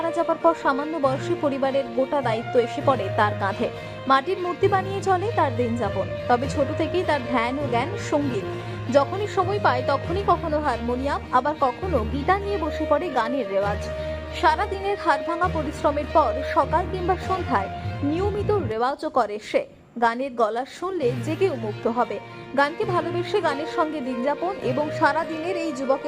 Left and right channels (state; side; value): identical; both; correlation 1.00